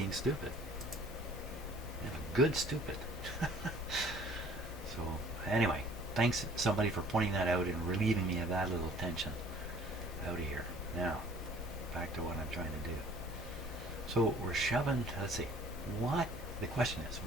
stupid. I'm a good stupid. So anyway, thanks somebody for pointing that out and relieving me of that little tension out of here. Now, back to what I'm trying to do. So we're shoving, let's see, the question is,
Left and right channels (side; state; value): both; normal; correlation 0.53